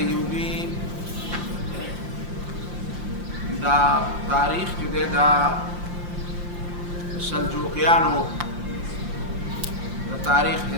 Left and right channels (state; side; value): late; left; 5.7 ms